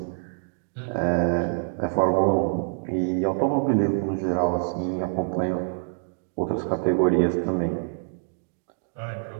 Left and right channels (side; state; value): left; silent; digital silence